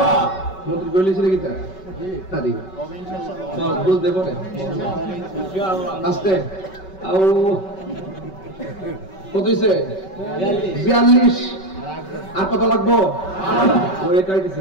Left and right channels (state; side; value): late; right; 5.3 ms